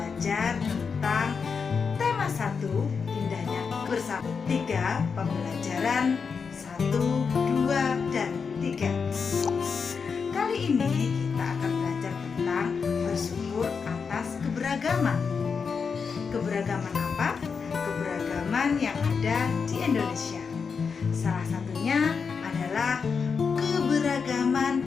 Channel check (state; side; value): quieter; right; 5.6 dB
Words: tentang tema 1, indahnya bersama. 3, pembelajaran 1, 2, dan 3. Kali ini kita akan belajar tentang bersyukur atas keberagaman. Keberagaman apa? Keberagaman yang ada di Indonesia. Salah satunya adalah keberagaman